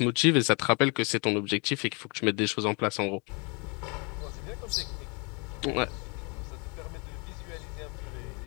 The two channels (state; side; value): quieter; right; 32.2 dB